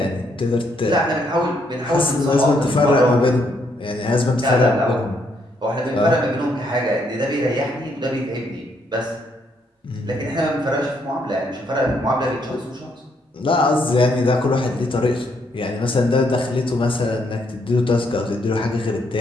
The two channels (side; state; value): both; normal; correlation 0.73